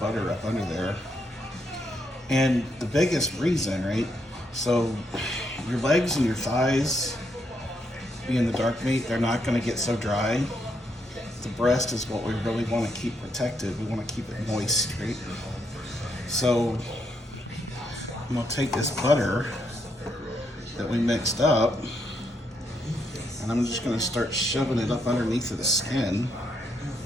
up under there. And the biggest reason, right? So your legs and your thighs, being the dark meat, they're not gonna get so dry. The breast is what we really wanna keep protected. We wanna keep it moist, right? So I'm gonna take this butter that we mixed up, and I'm just gonna start shoving it up underneath of the skin.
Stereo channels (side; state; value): both; normal; correlation 0.77